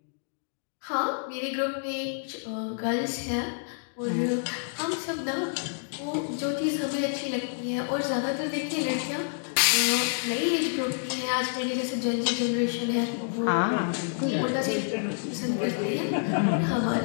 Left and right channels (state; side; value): silent; right; digital silence